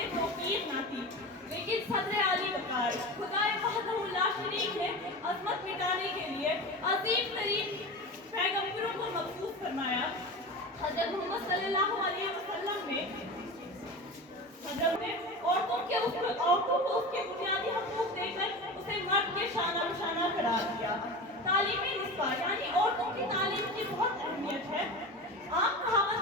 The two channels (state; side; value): normal; both; correlation 0.28